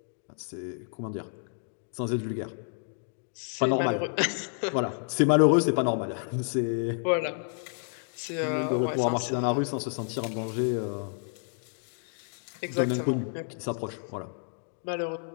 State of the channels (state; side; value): silent; right; 58 dB below the other